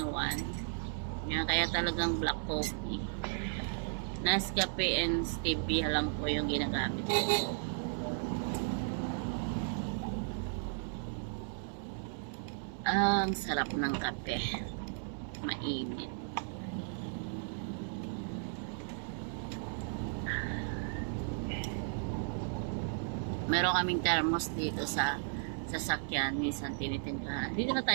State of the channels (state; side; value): silent; left; 54 dB below the other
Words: Yan, kaya talagang black coffee. Nescafe and stevia lang po yung ginagamit ko. Ang sarap ng kape. Mainit. Meron kaming thermos dito sa sasakyan. Minsan tinitimplahan. Dito na